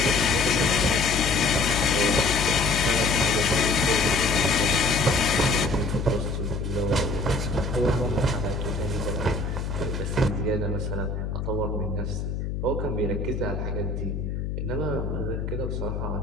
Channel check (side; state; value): left; noise; hum, 3 dB below the sound